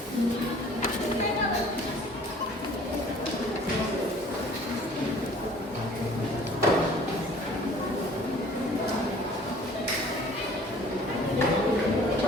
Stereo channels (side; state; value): both; normal; correlation 0.51